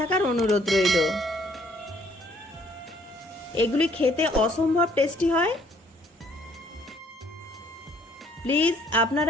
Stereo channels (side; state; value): both; normal; correlation 0.62